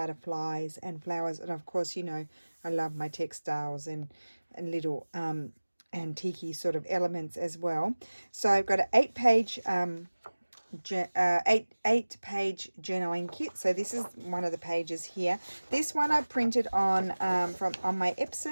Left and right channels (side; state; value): both; inverted; correlation -1.00